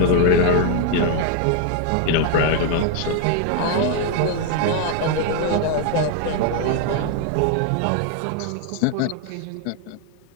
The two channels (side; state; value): both; different; correlation 0.01